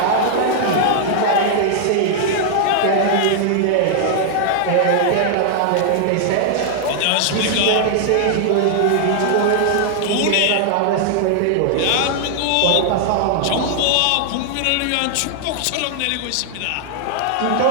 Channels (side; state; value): both; different; correlation -0.01